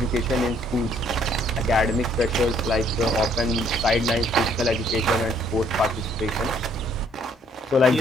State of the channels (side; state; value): both; normal; correlation 0.64